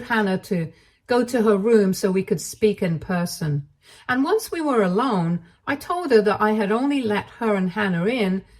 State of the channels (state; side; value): identical; both; correlation 1.00